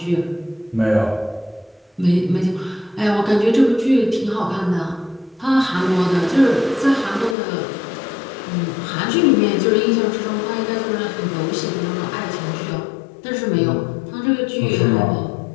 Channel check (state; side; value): drops out; right; at 7.4 s